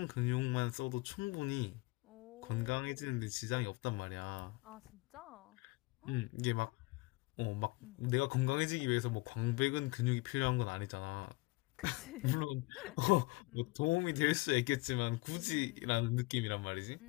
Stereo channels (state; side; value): quieter; right; 23.4 dB